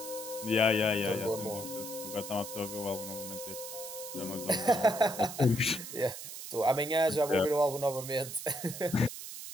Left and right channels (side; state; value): right; noise; hiss, 10 dB below the sound